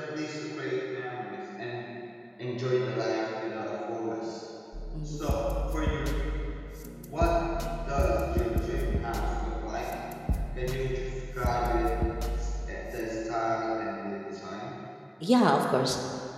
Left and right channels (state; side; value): identical; both; correlation 1.00